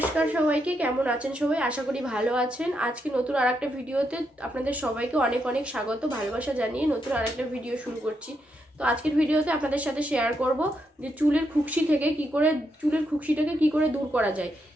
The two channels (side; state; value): both; normal; correlation 0.81